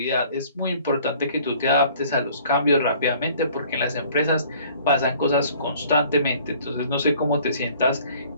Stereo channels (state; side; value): inverted; both; correlation -0.54